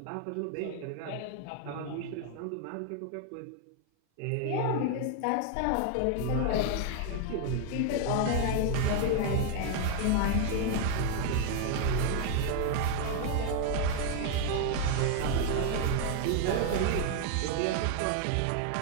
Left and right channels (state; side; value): different; both; correlation 0.00